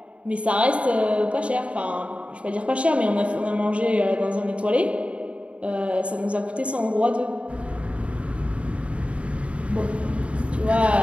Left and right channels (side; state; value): left; late; 0.062 ms